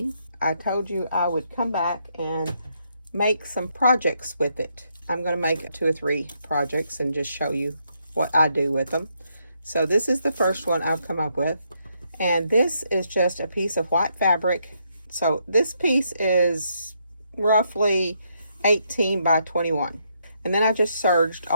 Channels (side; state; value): both; inverted; correlation -0.76